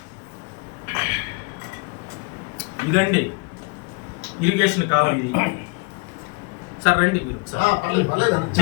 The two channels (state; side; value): quieter; right; 30.2 dB